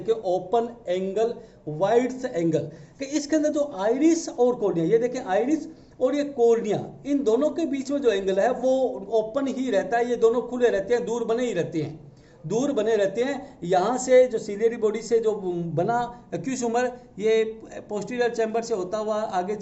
ओपन एंगल वाइड एंगल, कि इसके अंदर जो आइरिस और कोर्निया, ये देखिए आइरिस और ये कोर्निया, इन दोनों के बीच में जो एंगल है वो ओपन ही रहता है, ये दोनों खुले रहते हैं, दूर बने ही रहते हैं, दूर बने रहते हैं। यहाँ से जो सीलियरी बॉडी से जो बना एक्यूस ह्यूमर, ये पोस्टीरियर चैम्बर से होता हुआ आगे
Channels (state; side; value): identical; both; correlation 1.00